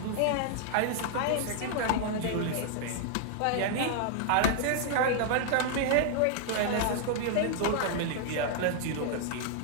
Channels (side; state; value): both; different; correlation -0.01